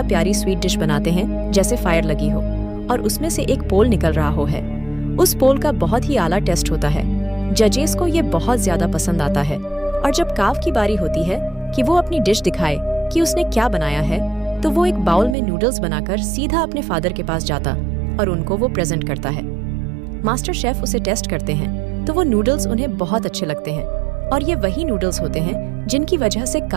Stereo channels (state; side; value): drops out; left; at 15.4 s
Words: प्यारी स्वीट डिश बनाते हैं, जैसे फायर लगी हो और उसमें से एक पोल निकल रहा हो है। उस पोल का बहुत ही आला टेस्ट होता है। जजेस को ये बहुत ज्यादा पसंद आता है और जब काव की बारी होती है कि वो अपनी डिश दिखाए कि उसने क्या बनाया है, तो वो एक बाउल में नूडल्स बनाकर सीधा अपने फादर के पास जाता और उनको वो प्रेजेंट करता है। मास्टर शेफ उसे टेस्ट करते हैं तो वो नूडल्स उन्हें बहुत अच्छे लगते हैं और ये वही नूडल्स होते हैं जिनकी वजह से